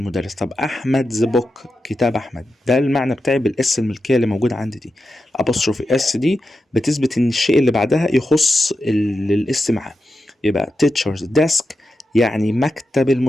طب احمد the book، كتاب احمد. ده المعنى بتاعي بالاس الملكيه اللي موجوده عندي دي. الابوستروفي اس دي بتثبت ان الشيء اللي بعدها يخص الاس معاه. يبقى teacher's desk يعني مكتب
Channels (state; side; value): normal; both; correlation 0.89